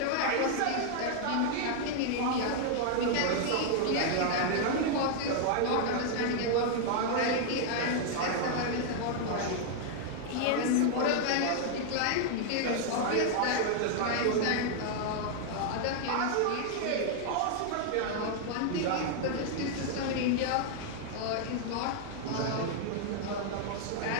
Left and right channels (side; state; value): both; different; correlation 0.00